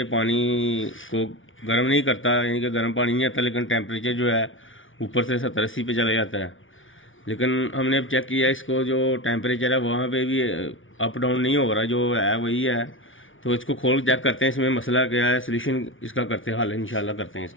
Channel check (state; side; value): late; right; 0.57 ms